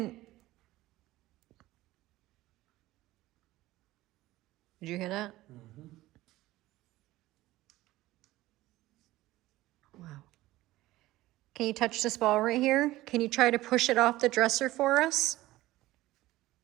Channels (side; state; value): left; quieter; 17.1 dB